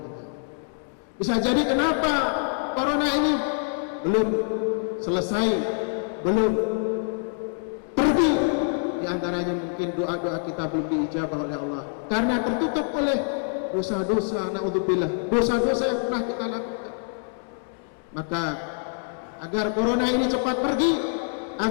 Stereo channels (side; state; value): right; silent; 61 dB below the other